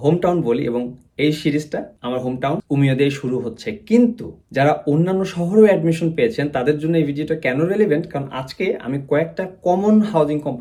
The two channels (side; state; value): both; identical; correlation 1.00